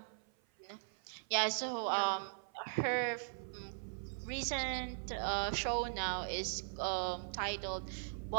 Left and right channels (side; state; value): left; silent; 51 dB below the other